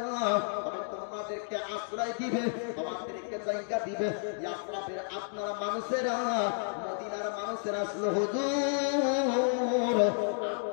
তবে তোমাদেরকে আশ্রয় দিবে, তোমাদেরকে জায়গা দিবে। ইয়াসরাফের আপনারা মানুষেরা মদিনার মানুষেরা আসলে হুজুর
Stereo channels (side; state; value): right; silent; digital silence